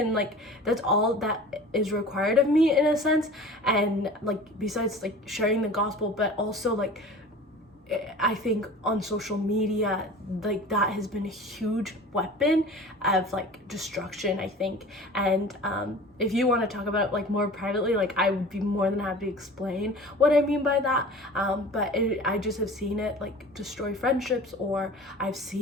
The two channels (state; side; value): normal; both; correlation 0.40